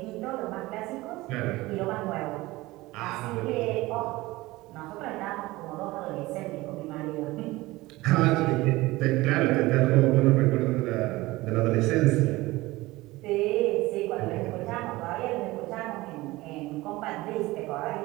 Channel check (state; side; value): quieter; left; 19.7 dB